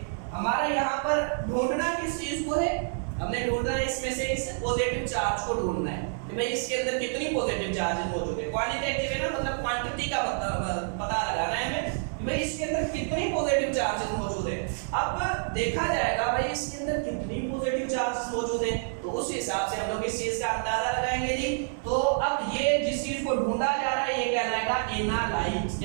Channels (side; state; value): left; silent; 59 dB below the other